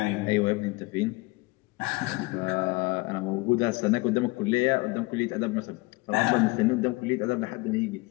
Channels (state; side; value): quieter; right; 24.1 dB